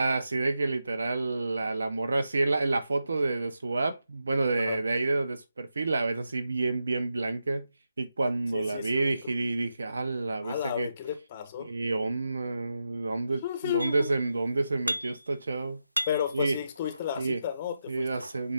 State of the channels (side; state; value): both; inverted; correlation -0.87